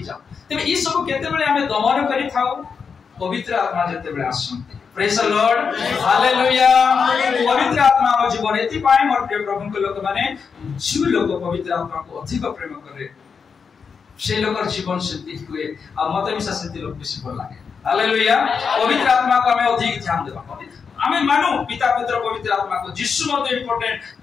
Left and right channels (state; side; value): quieter; right; 5.9 dB